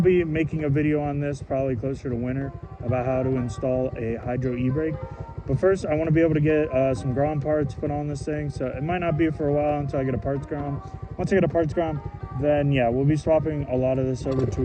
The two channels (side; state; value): both; identical; correlation 1.00